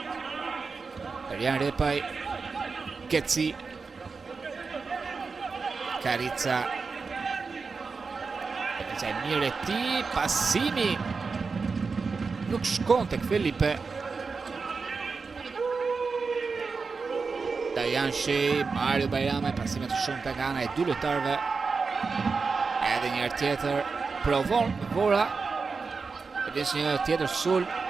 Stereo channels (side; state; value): left; quieter; 4.7 dB